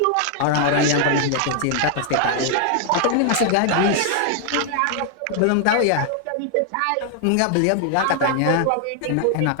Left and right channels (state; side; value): different; both; correlation 0.00